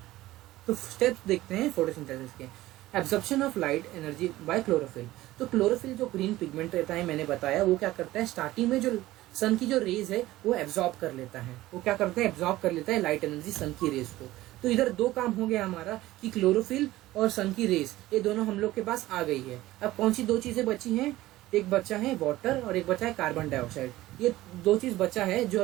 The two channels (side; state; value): left; quieter; 16.6 dB